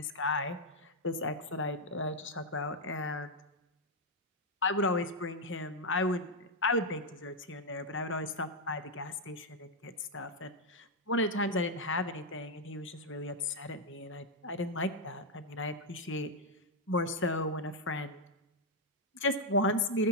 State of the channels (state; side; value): normal; both; correlation 0.00